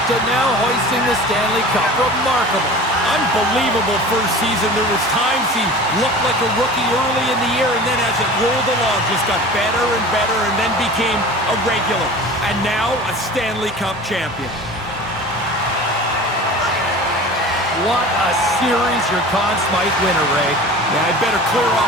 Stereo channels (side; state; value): both; normal; correlation 0.38